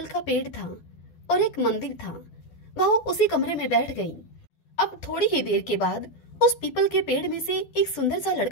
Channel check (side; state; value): right; late; 12 ms